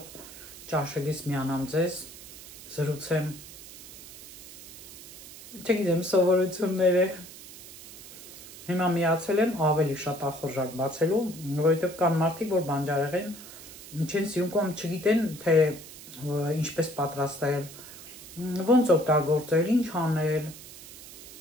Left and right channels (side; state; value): right; noise; hiss, 16 dB below the sound